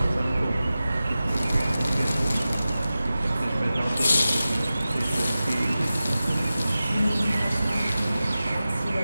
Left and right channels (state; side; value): inverted; both; correlation -0.95